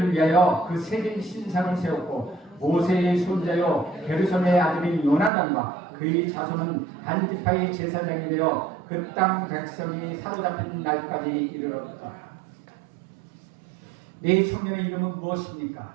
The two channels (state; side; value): drops out; left; at 5.3 s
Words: 위하여 그 새긴 신상을 세웠고 모세의 손자요 게르솜의 아들인 요나단과 그의 자손은 단 지파의 제사장이 되어 그 땅 백성이 사로잡힌 날까지 이르렀다. 네 청년의 이름은 무엇입니까?